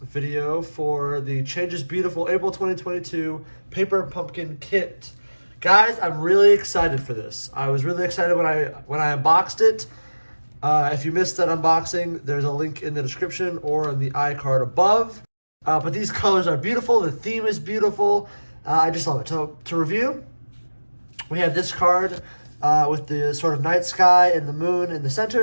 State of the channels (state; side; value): inverted; both; correlation -1.00